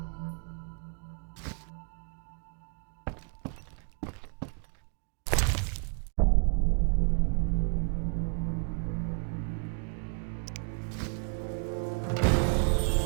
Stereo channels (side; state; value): left; quieter; 39.6 dB